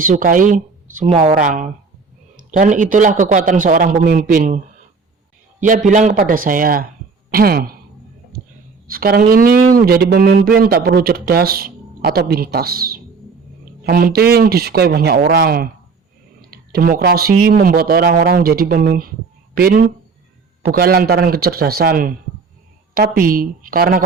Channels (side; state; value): left; quieter; 4.8 dB